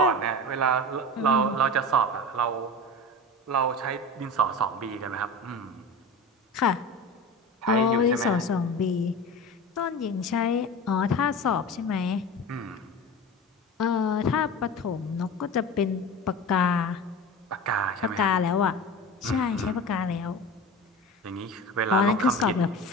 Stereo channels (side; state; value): both; normal; correlation 0.31